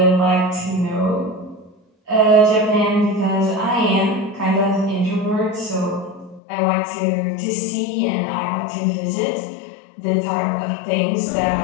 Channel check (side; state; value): right; drops out; at 6.4 s